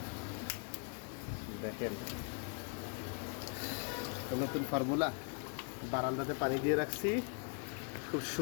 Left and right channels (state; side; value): quieter; right; 37.7 dB